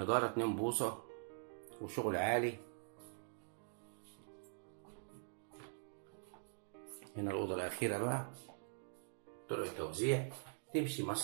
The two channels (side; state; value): left; silent; digital silence